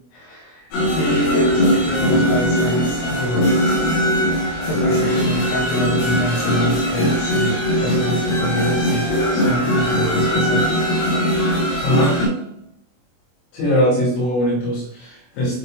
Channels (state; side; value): late; right; 24 ms